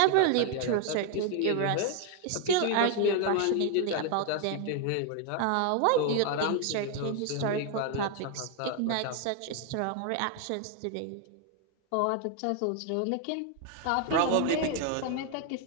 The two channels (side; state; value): both; different; correlation 0.01